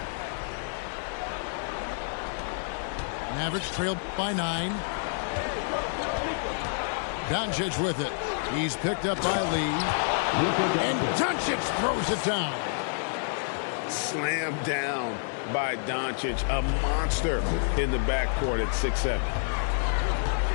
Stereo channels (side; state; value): right; silent; digital silence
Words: Mavericks trail by 9. Doncic with it. He's picked up by Lee. And Doncic throws it down. Slammed down by Doncic. A monster in the backcourt at 6'7".